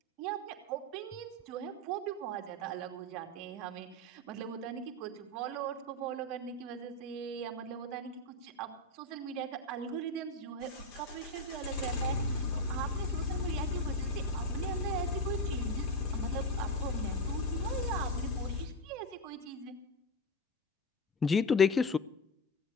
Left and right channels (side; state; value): both; normal; correlation 0.12